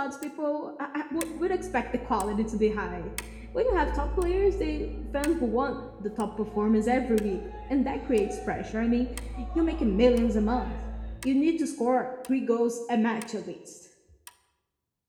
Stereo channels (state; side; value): identical; both; correlation 1.00